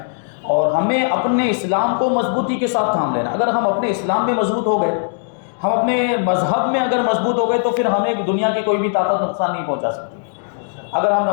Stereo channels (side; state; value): right; silent; digital silence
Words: اور ہمیں اپنے اسلام کو مضبوطی کے ساتھ تھام لینا۔ اگر ہم اپنے اسلام میں مضبوط ہو گئے، ہم اپنے مذہب میں اگر مضبوط ہو گئے، تو پھر ہمیں دنیا کی کوئی بھی طاقت نقصان نہیں پہنچا سکتی۔ اگر ہم